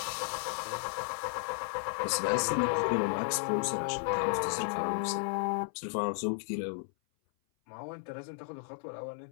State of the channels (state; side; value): silent; right; 55 dB below the other